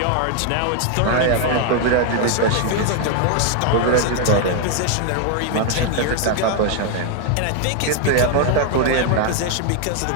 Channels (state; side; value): different; both; correlation 0.00